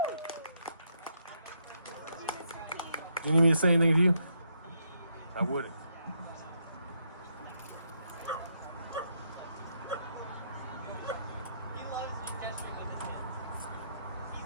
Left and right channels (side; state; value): both; inverted; correlation -0.76